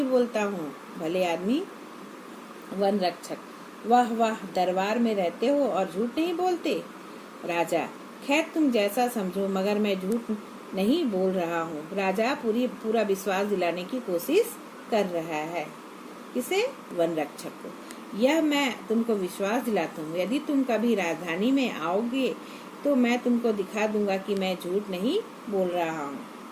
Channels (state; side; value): identical; both; correlation 1.00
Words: बोलता हूँ भले आदमी। वन रक्षक, वाह वाह, दरबार में रहते हो और झूठ नहीं बोलते? राजा, खैर तुम जैसा समझो, मगर मैं झूठ नहीं बोल रहा हूँ। राजा पूरा विश्वास दिलाने की कोशिश कर रहा है। किसे? वन रक्षक को। यह मैं तुमको विश्वास दिलाता हूँ, यदि तुम कभी राजधानी में आओगे तो मैं तुमको दिखा दूंगा कि मैं झूठ नहीं बोल रहा हूँ।